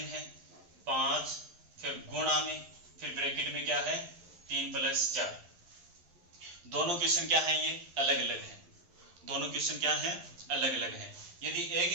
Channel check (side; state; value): left; late; 11 ms